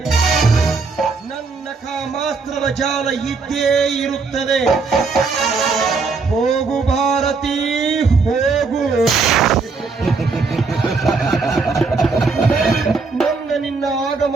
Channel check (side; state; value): left; quieter; 4.4 dB